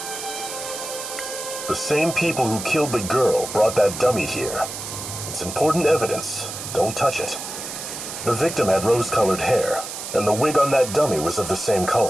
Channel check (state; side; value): noise; right; hiss, 8 dB below the sound